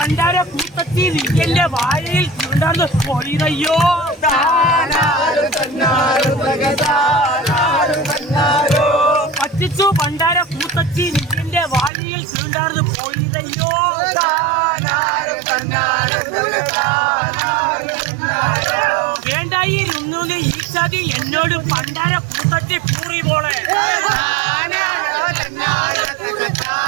കൂട്ടത്തി നിന്റെ വായിൽ ചുണ്ടന്ന് പൊളിതയ്യോ. പറ്റിച്ചു ഭണ്ഡാര കൂട്ടത്തി നിന്റെ വായിൽ ചുണ്ടാർന്ന് പൊളിതയ്യോ. വേണ്ടായിരുന്നു ഈ ചതി എന്നോട് പണ്ടാര കൂട്ടത്തി പൂറി പോളെ.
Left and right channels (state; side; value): drops out; left; at 11.9 s